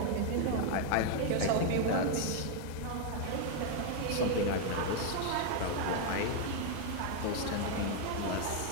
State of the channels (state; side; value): different; both; correlation 0.00